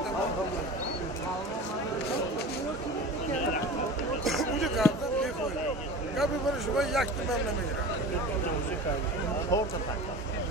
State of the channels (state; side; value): normal; both; correlation 0.34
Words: Ucu kaldı bir koy. Kapı barışıma yaktım ben ne girer. Orta takla.